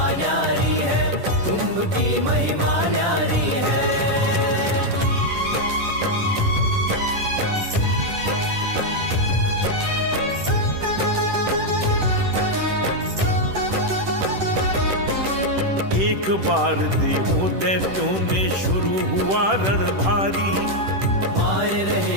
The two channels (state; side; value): late; left; 10 ms